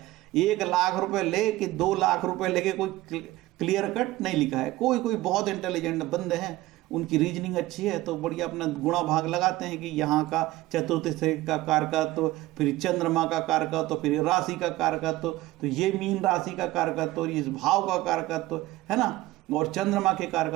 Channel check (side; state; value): left; quieter; 17.5 dB